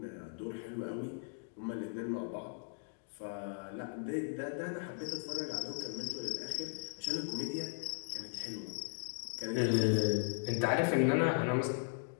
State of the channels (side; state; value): right; silent; digital silence